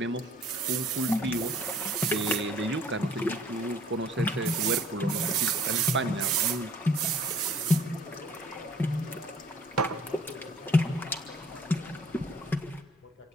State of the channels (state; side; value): normal; both; correlation 0.56